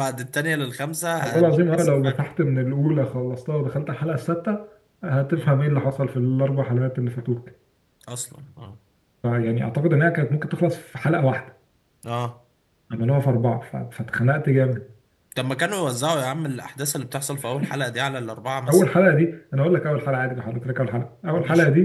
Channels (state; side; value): identical; both; correlation 1.00